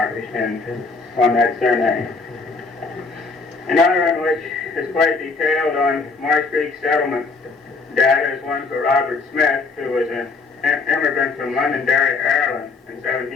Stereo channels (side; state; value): right; quieter; 4.2 dB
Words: on that surname. Another one which is quite detailed on Marsh Creek settlement data is one for Robert Smith, who was an immigrant from Londonderry, Ireland in